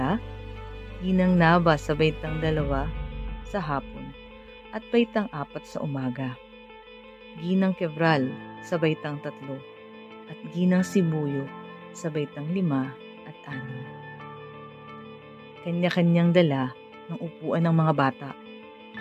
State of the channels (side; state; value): both; identical; correlation 1.00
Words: Ginang Nava sa baitang 2 sa hapon at baitang 4 sa umaga, Ginang Quebral sa baitang 3 at Ginang Sibuyo sa baitang 5 at 6. Kanya-kanyang dala ng upuan ng mga bata